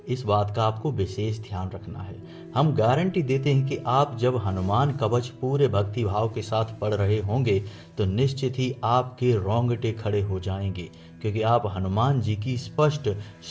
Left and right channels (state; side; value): identical; both; correlation 1.00